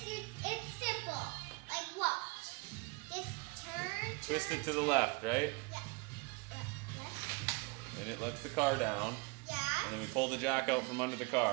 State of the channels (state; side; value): quieter; left; 28.9 dB